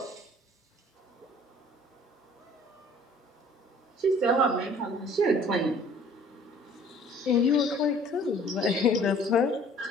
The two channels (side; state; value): both; normal; correlation 0.52